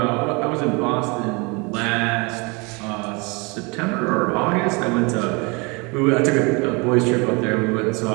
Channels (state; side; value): quieter; left; 28.8 dB